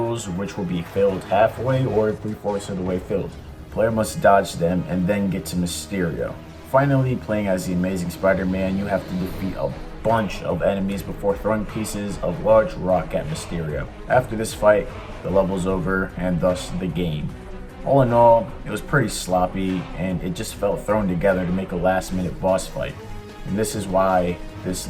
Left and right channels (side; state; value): both; identical; correlation 1.00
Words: which will be filled halfway or 3/4 of the way filled. The player must dodge them and then get to Mysterio. Finally, playing as the Amazing Spider-Man, you have to defeat a bunch of enemies before throwing pieces of large rock at Mysterio. After this fight, the level's over and thus the game. All in all, it was pretty sloppy and it just felt thrown together to make a last-minute boss fight. And this is why this